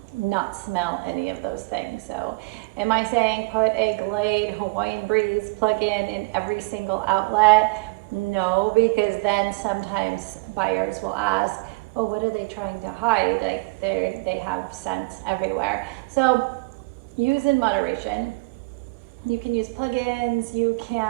not smell any of those things. So am I saying put a Glade Hawaiian Breeze plug-in every single outlet? No, because then sometimes buyers will ask, oh, what are they trying to hide? Like they have scents everywhere. So use in moderation. You can use plug-ins, you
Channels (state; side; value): quieter; left; 27.6 dB